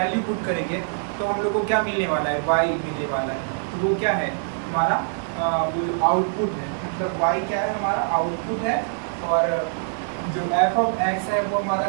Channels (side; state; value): left; silent; digital silence